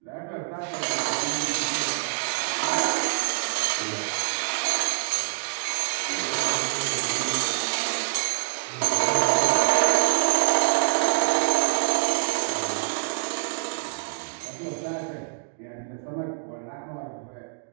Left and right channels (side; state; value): left; silent; digital silence